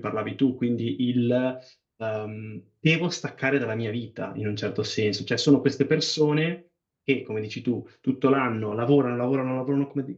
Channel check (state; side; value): identical; both; correlation 1.00